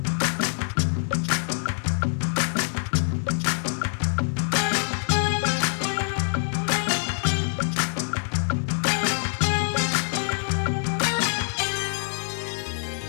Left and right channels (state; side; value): silent; right; 62 dB below the other